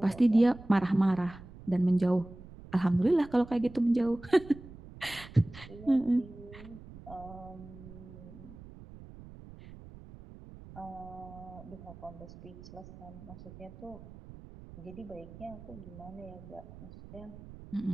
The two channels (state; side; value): noise; right; rumble, 17 dB below the sound